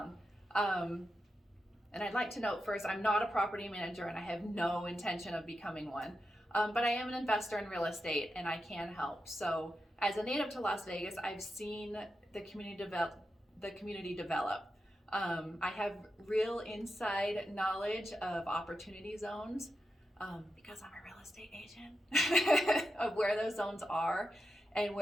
And I'd like to note first, I'm not a property manager and I have no intention of becoming one, but I am an investor in real estate and I can help. So as a native to Las Vegas, I've seen the community develop. I have real inside knowledge of opportunity zones, because I'm a real estate agent, of where those zones are and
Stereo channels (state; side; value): normal; both; correlation 0.88